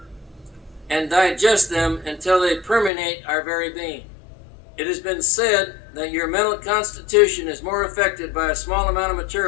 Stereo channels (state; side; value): drops out; right; at 2.9 s